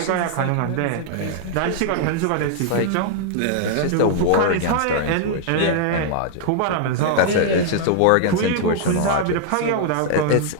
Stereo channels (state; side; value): different; both; correlation -0.01